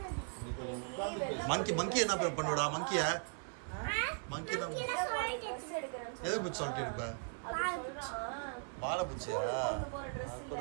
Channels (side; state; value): left; silent; 52 dB below the other